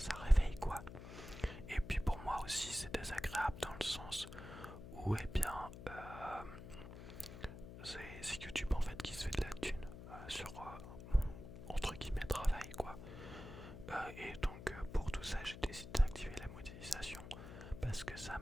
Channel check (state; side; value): noise; left; hum, 12 dB below the sound